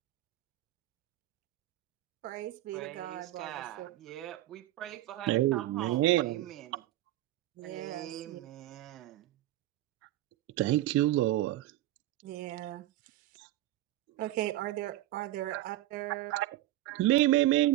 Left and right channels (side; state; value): left; quieter; 15.3 dB